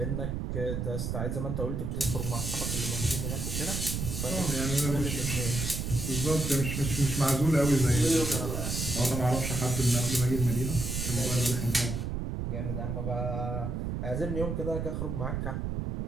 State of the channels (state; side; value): noise; right; rumble, 2 dB below the sound